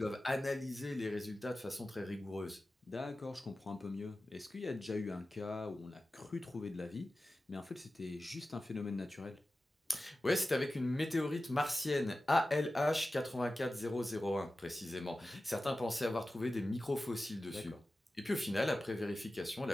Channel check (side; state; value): both; normal; correlation 0.95